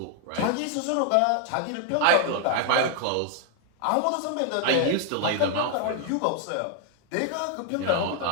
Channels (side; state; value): both; different; correlation 0.00